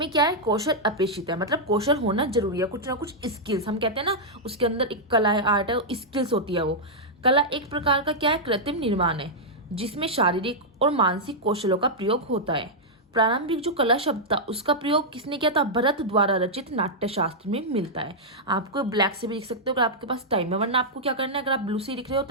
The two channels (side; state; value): both; normal; correlation -0.07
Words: क्या है, कौशल अपेक्षित है। मतलब कौशल होना जरूरी है, कुछ ना कुछ स्किल्स, हम कहते हैं ना उसके अंदर एक कला है, आर्ट है, स्किल्स होती है वो। कला एक प्रकार का क्या है, कृत्रिम निर्माण है जिसमें शारीरिक और मानसिक कौशलों का प्रयोग होता है। प्रारंभिक जो कला शब्द था उसका प्रयोग किसने किया था, भरत द्वारा रचित नाट्य शास्त्र में मिलता है। आपको ब्लैक से भी लिख सकते हो अगर आपके पास टाइम है, वरना आपको क्या करना है, अगर आप ब्लू से लिख रहे हो